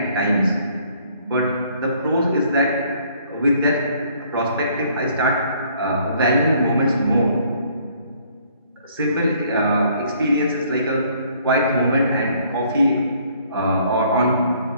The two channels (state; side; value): inverted; both; correlation -0.62